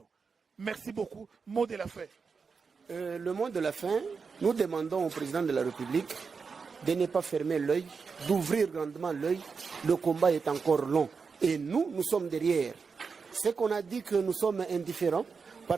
Merci beaucoup. Mot de la fin. Le mot de la fin, nous demandons au président de la République de ne pas fermer l'œil, d'ouvrir grandement l'œil. Le combat est encore long. Et nous sommes derrière. C'est qu'on a dit que nous sommes indifférents.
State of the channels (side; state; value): left; quieter; 5.2 dB